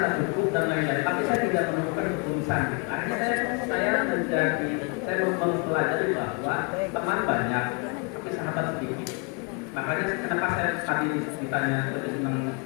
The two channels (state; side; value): quieter; right; 33.2 dB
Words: cukup dan lain-lain, tapi saya tidak menemukan ketulusan. Akhirnya saya mempelajari bahwa teman banyak, tapi sahabat sedikit. Makanya kenapa saya tadi ditanya lebih senang